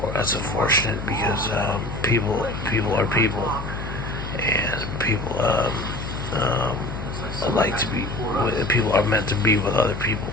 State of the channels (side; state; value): left; noise; hum, 7 dB below the sound